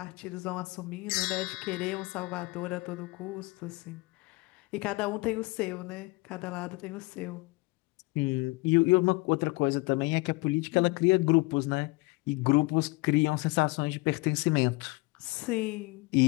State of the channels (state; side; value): quieter; right; 24.4 dB